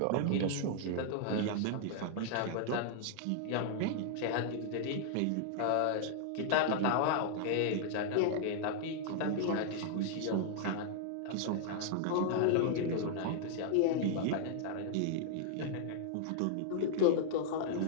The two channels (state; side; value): different; both; correlation 0.00